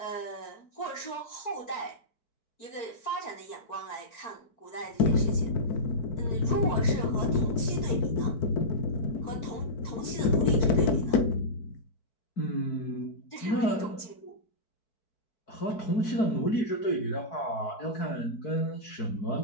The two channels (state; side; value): late; right; 4.6 ms